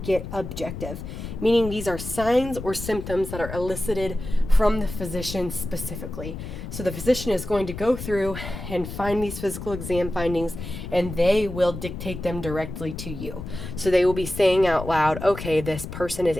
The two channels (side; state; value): left; noise; rumble, 9 dB below the sound